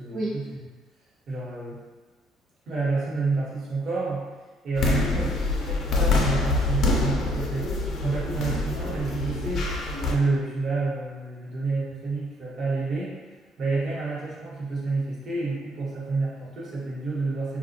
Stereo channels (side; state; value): both; normal; correlation 0.67